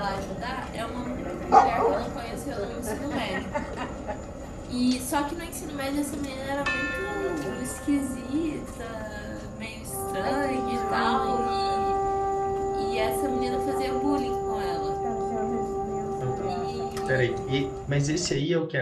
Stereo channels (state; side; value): identical; both; correlation 1.00